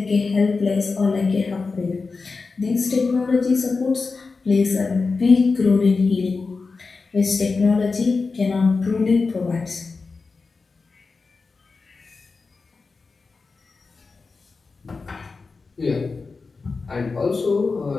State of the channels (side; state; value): right; quieter; 4.3 dB